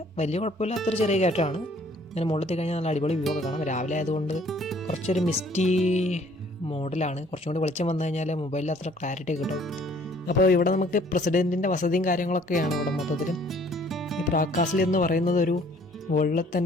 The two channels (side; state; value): both; normal; correlation 0.58